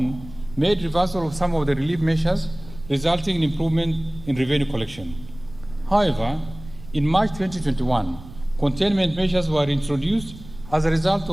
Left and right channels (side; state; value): right; noise; rumble, 17 dB below the sound